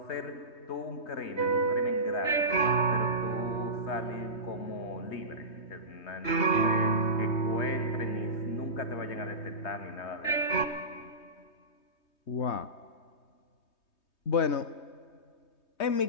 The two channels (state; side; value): late; right; 3.2 ms